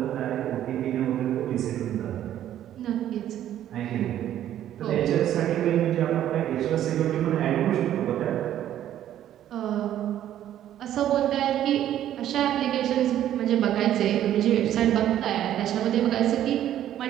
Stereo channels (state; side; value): quieter; left; 11.6 dB